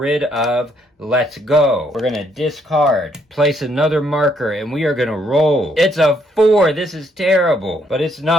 of Let's Go. We're going to discard. Place another marker, and we are going to roll. It's a 4. This is terrible. But it's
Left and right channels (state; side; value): normal; both; correlation 0.71